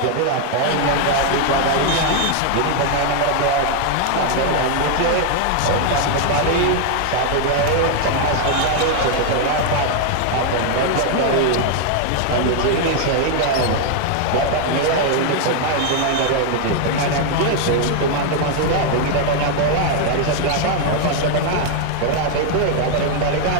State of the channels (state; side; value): different; both; correlation 0.00